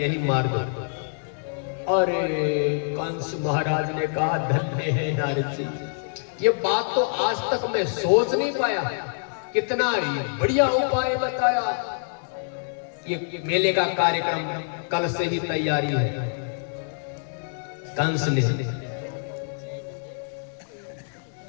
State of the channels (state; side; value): silent; right; 61 dB below the other